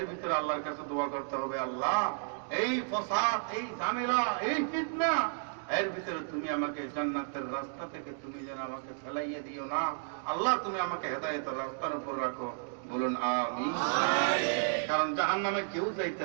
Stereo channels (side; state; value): left; silent; digital silence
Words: ভিতরে আল্লাহর কাছে দোয়া করতে হবে, আল্লাহ এই ফসাদ, এই ঝামেলা, এই ফিতনা এর ভিতরে তুমি আমাকে জান্নাতের রাস্তা থেকে তুমি যেন আমাকে ফেলাইয়ে দিও না। আল্লাহ তুমি আমাকে হেদায়েতের রাস্তার উপর রাখো। বলুন আমিন। কারণ জাহান্নামে কেউ যাইতে